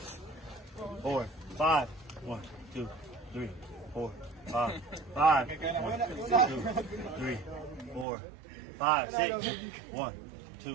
4, 5. 1, 2, 3, 4, 5. 5. 1, 2, 3, 4, 5. 6. 1,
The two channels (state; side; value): drops out; left; at 8.1 s